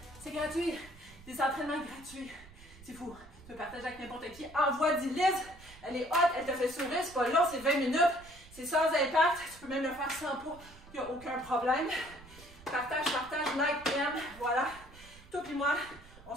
c'est gratuit. Des entraînements gratuits. C'est fou. Tu peux partager avec n'importe qui. Envoie 10 Liz. Elle est hot, elle te fait sourire. C'est pas long, c'est 20 minutes. C'est sans impact. Tu peux même le faire sans poids. Il n'y a aucun problème. Partage, like, aime. Voilà. Toi et moi, on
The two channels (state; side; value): noise; right; rumble, 21 dB below the sound